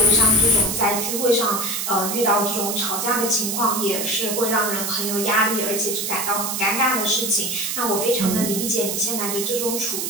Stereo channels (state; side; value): noise; right; hiss, 2 dB below the sound